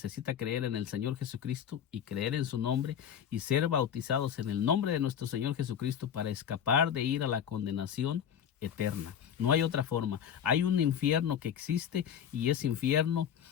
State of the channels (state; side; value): quieter; right; 8.7 dB